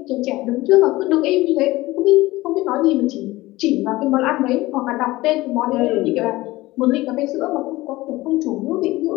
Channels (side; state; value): right; quieter; 18.9 dB